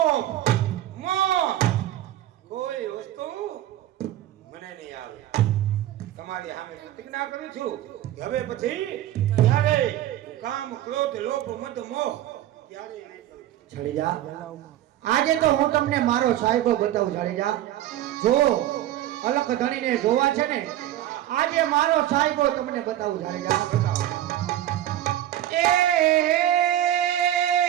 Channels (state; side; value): quieter; left; 13.1 dB